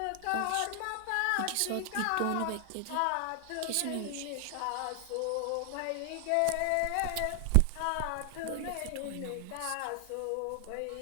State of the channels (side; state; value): both; different; correlation 0.00